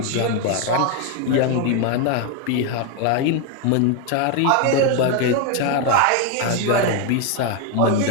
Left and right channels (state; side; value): different; both; correlation 0.01